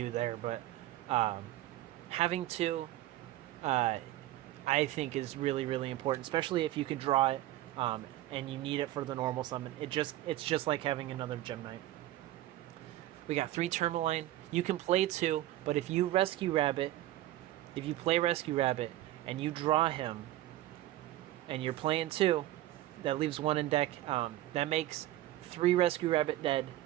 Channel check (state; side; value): quieter; left; 15.0 dB